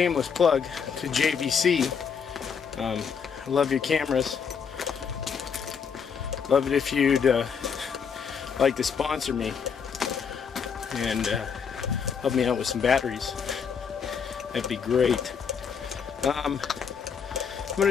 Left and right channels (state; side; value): quieter; right; 6.6 dB